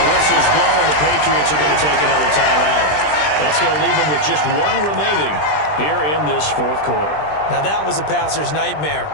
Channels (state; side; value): late; right; 20 ms